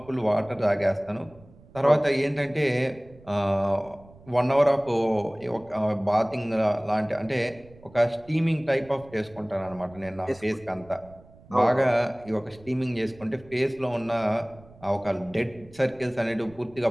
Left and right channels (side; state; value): right; noise; rumble, 23 dB below the sound